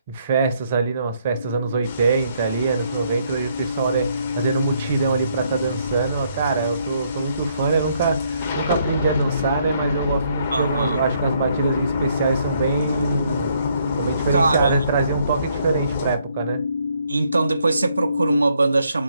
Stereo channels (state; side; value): inverted; both; correlation -0.71